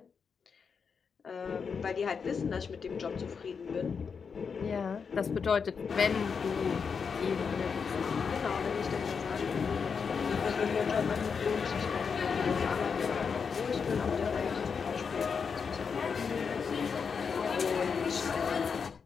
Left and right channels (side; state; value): right; quieter; 5.9 dB